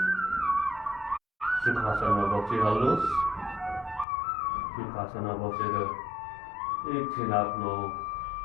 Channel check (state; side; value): drops out; right; at 4.0 s